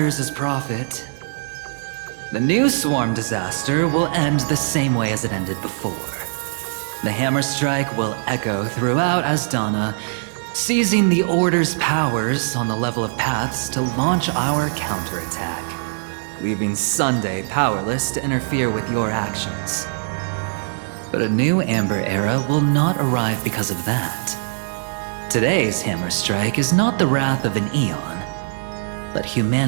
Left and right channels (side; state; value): left; silent; 64 dB below the other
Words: is profit. The new swarm disaster will end the same way as it ended before. The hammer strike will echo throughout Asdana, seizing the Order's powers on the level of paths to launch our counterattack, leaving Sunday powerless to interfere with your actions. But a new Amber Era will not arrive because of that. Today's hammer strike is not the wrath of an eon, but